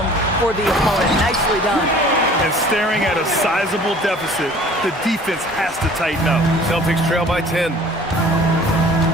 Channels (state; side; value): normal; both; correlation 0.49